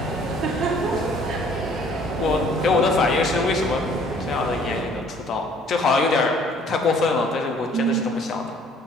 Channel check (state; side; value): normal; both; correlation 0.57